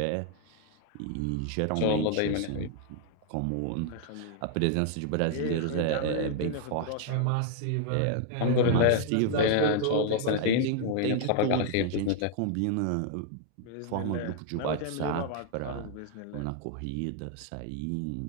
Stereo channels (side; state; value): both; different; correlation 0.00